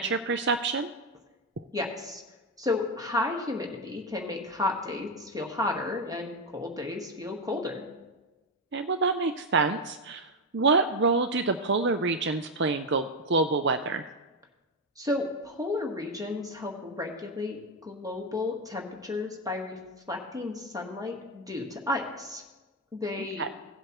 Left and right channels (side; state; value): both; normal; correlation 0.08